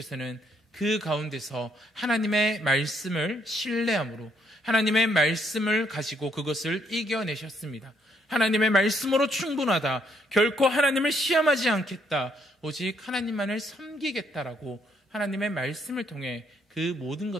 그 가운데서 하나님의 말씀을 신뢰함으로 하나님의 말씀을 가지고 그것을 이겨내셨습니다. 하나님의 말씀으로 충분하다. 결코 하나님을 시험하지 않겠다. 오직 하나님만을 섬기겠다라고 하나님의 말씀을 통해 그 모든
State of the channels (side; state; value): both; normal; correlation 0.71